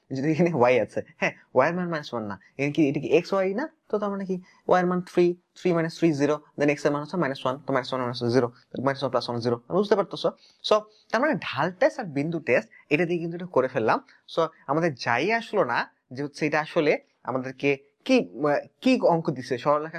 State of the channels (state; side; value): identical; both; correlation 1.00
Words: যদি এখানে y আছে, হ্যাঁ y এর মান -1 না, এখানে কি এটা কি x y না, তো তার মানে কি y এর মান 3 3 - 3 0, দেন x এর মান হচ্ছে -1, তো -1 - 0, -1 + 1 0, বুঝতে পারতেছো? সো তার মানে ঢাল টেস্ট আর বিন্দু টেস্ট এটা দিয়ে কিন্তু এটা করে ফেললাম। সো আমাদের যাই আসলো না যে হচ্ছে এটা আসলে আমাদেরকে কি কি অঙ্ক দিছে,